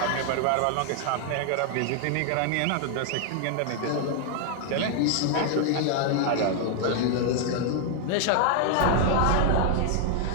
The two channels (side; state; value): both; different; correlation 0.00